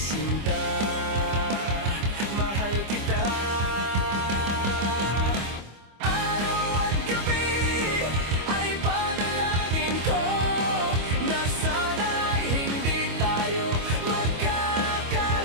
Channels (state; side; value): late; left; 25 ms